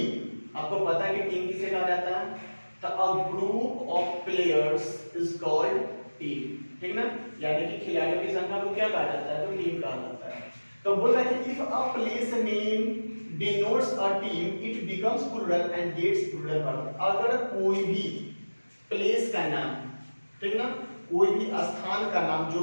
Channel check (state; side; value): inverted; both; correlation -1.00